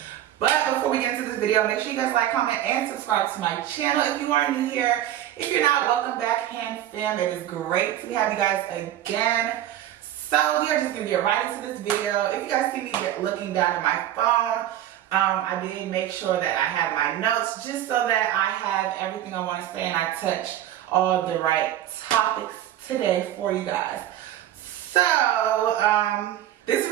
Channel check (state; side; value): quieter; left; 12.2 dB